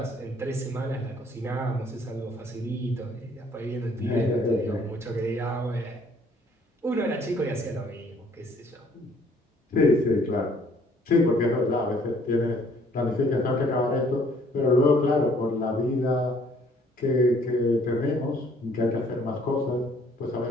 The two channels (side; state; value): both; normal; correlation 0.61